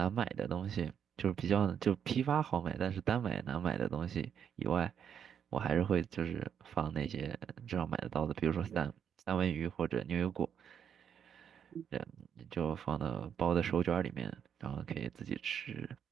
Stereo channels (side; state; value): left; quieter; 8.2 dB